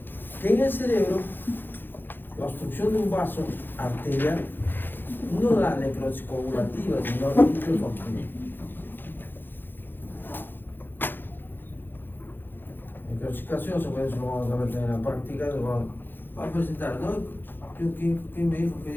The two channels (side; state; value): right; late; 0.097 ms